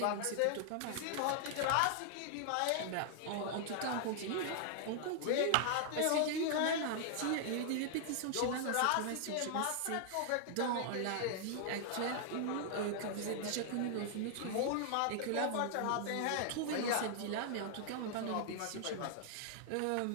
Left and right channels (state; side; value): different; both; correlation -0.01